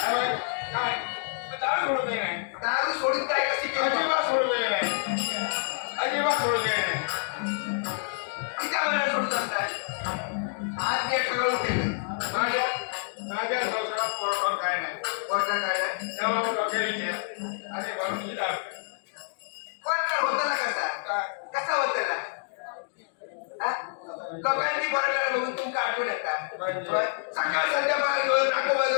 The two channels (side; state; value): right; silent; digital silence